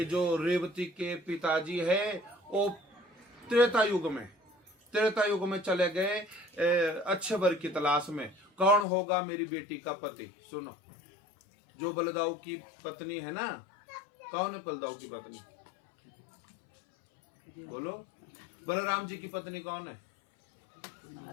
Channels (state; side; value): drops out; right; at 8.8 s